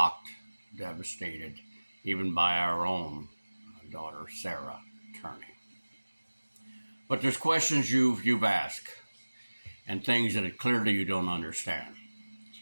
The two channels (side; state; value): both; inverted; correlation -1.00